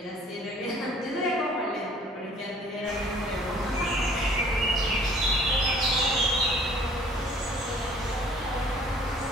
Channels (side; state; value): both; normal; correlation 0.54